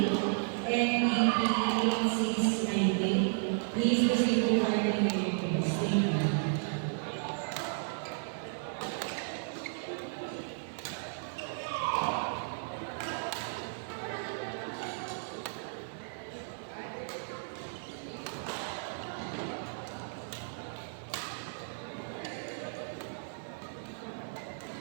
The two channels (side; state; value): left; silent; digital silence